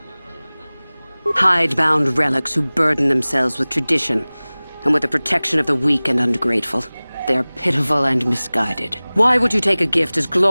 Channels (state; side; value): inverted; both; correlation -0.99